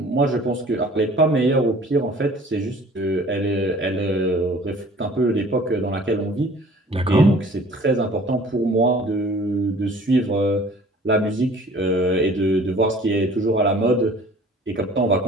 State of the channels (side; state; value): both; normal; correlation 0.50